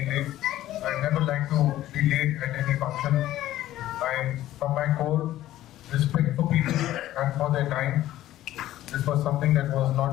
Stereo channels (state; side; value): quieter; right; 14.1 dB